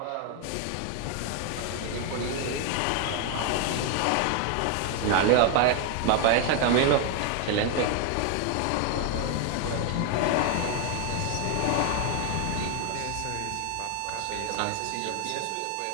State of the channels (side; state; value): both; different; correlation 0.01